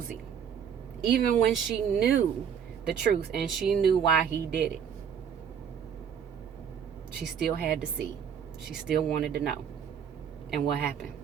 Even when she knew the truth and she knew why he did it. She still had to see. She still wanted to know. And what happened?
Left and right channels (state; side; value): quieter; left; 7.8 dB